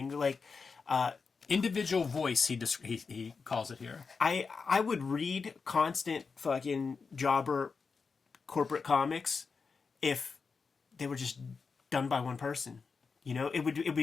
like individual voice. He calls it here. I would read constant fucking jobber corporate comics if they were just done by one person. It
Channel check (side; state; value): right; quieter; 5.0 dB